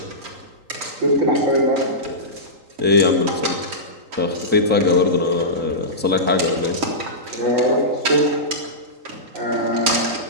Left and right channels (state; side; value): late; left; 3.9 ms